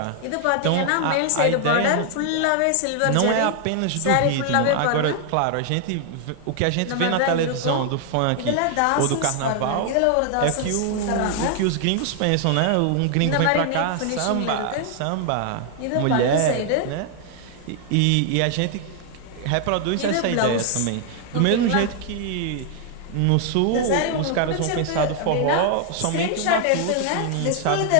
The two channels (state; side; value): different; both; correlation 0.00